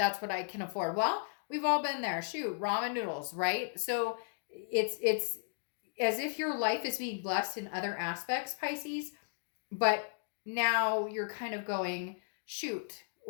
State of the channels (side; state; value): right; silent; digital silence